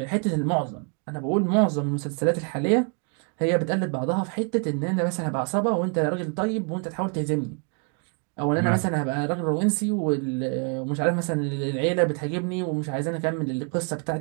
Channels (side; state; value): left; quieter; 39.5 dB